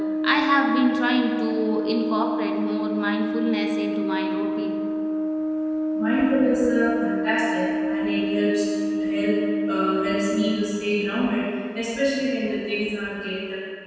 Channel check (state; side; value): identical; both; correlation 1.00